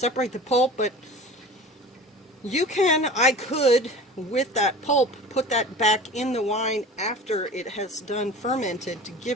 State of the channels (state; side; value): normal; both; correlation 0.38